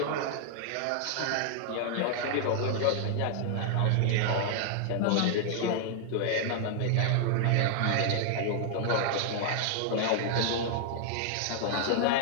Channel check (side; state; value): both; different; correlation 0.00